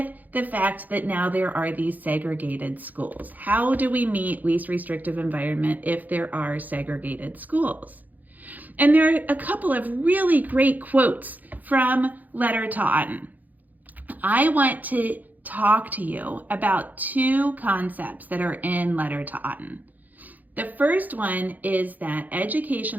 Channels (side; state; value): left; late; 0.082 ms